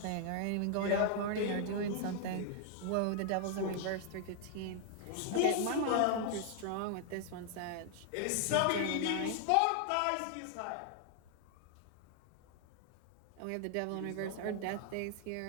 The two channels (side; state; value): both; different; correlation 0.00